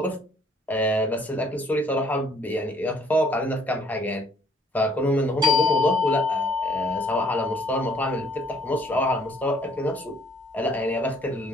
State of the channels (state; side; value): normal; both; correlation 0.61